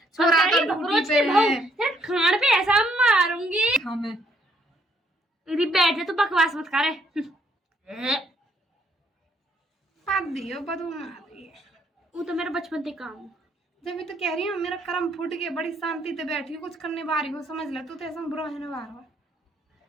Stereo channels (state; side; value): normal; both; correlation 0.69